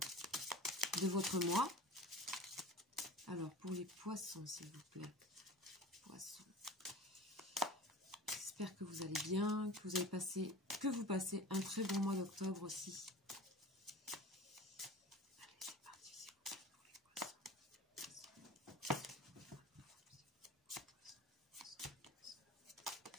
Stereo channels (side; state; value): both; normal; correlation 0.37